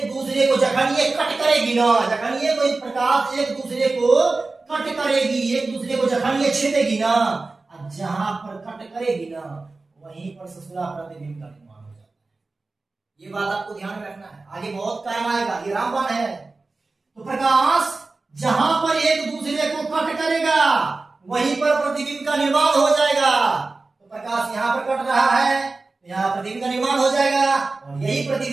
दूसरे को जखन ये कट करेगी ना, जखन ये कोई प्रकाश एक दूसरे को कट करेगी, एक दूसरे को जखन ये छेदेगी ना, जहां पर कट करेगी ना वहीं पर ससुरा प्रतिबिंब का निर्माण हो जाता है। ये बात आपको ध्यान में रखना है, आगे बहुत काम आएगा, ये रामबाण है। तो प्रकाश जहां पर एक दूसरे को कट करेगा वहीं पर प्रतिबिंब का निर्माण हो जाएगा। तो प्रकाश यहां पर कट रहा है, यहाँ प्रतिबिंब का निर्माण हो जाएगा, और यही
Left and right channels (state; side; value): quieter; left; 3.6 dB